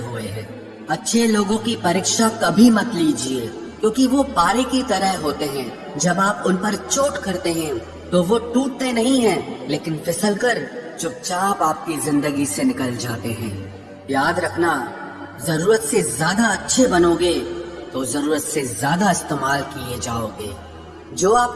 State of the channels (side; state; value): both; identical; correlation 1.00